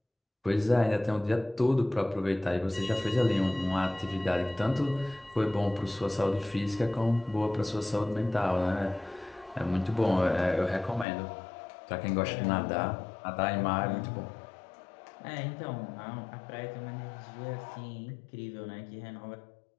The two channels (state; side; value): drops out; right; at 11.1 s